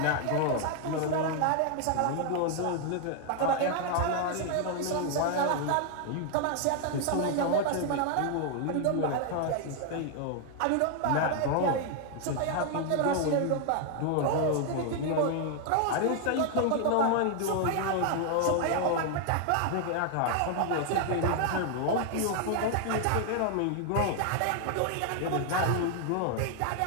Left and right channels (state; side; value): different; both; correlation 0.00